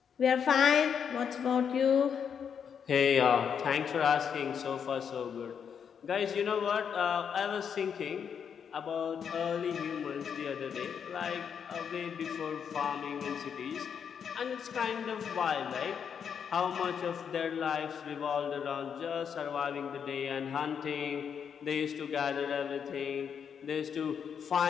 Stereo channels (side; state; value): right; quieter; 7.4 dB